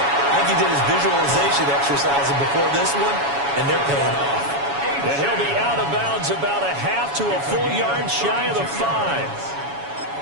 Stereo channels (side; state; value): left; late; 7.1 ms